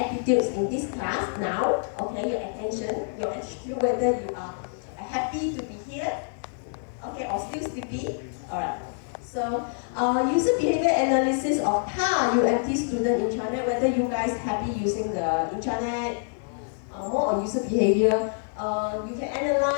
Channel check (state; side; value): silent; right; 60 dB below the other